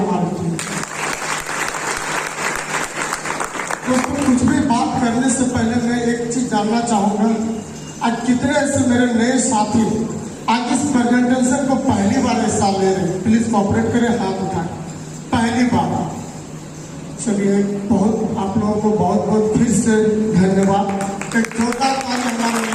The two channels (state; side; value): identical; both; correlation 1.00